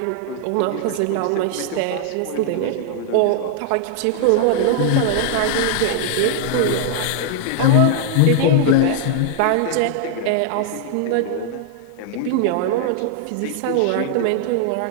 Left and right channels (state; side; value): different; both; correlation -0.01